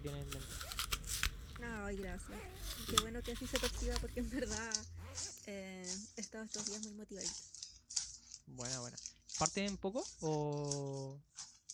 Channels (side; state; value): both; identical; correlation 1.00